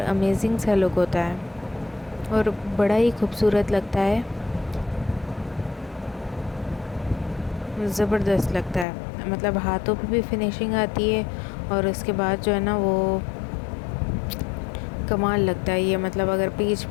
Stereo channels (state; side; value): drops out; right; at 8.8 s